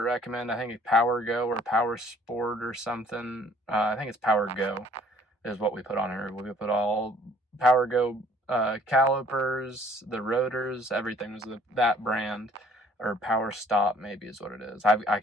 I think, Power Go or Power Sport or something. I think it's Power Go is what we put on here. We put all Power Go calipers, the rotors, everything was that brand, or Power Stop maybe is what it is. I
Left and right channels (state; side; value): normal; both; correlation 0.58